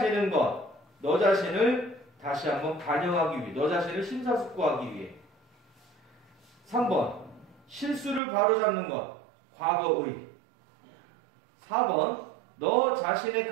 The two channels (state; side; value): drops out; left; at 8.2 s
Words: 것, 너 자신을 다시 한번 반영하기 위해, 너 자신을 심사숙고하기 위해. 3번. 실수를 바로잡는 것, 과거의. 4번. 너 자신의